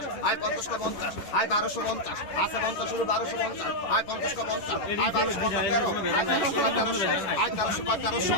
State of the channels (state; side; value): late; right; 11 ms